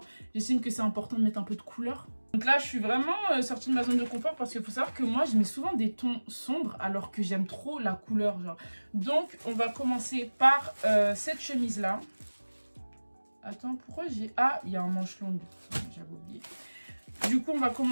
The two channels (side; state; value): both; inverted; correlation -1.00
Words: j'estime que c'est important de mettre un peu de couleur. Donc là, je suis vraiment sortie de ma zone de confort parce qu'il faut savoir que moi, je mets souvent des tons sombres alors que j'aime trop la couleur, genre. Donc, on va commencer par cette chemise-là. Attends, pourquoi j'ai... Ah, il y a un manche longue. J'avais oublié. Du coup, on va